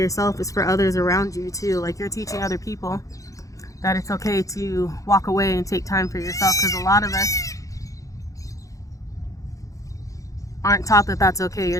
it's for others around you too. Like, you're teaching other people that it's okay to walk away and take time for yourself, because a lot of us aren't taught that that's okay.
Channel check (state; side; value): late; right; 0.16 ms